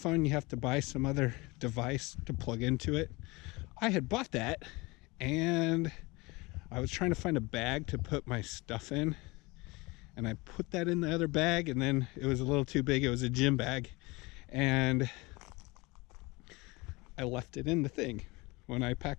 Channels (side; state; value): right; quieter; 24.2 dB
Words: You have to buy some other device to plug into it. I had bought that and I was trying to find a bag to put my stuff in, and I put that in the other bag, and then it was a little too big. It was a gym bag, and I left it in the thing when I